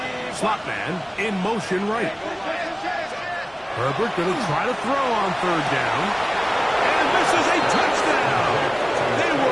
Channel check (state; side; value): identical; both; correlation 1.00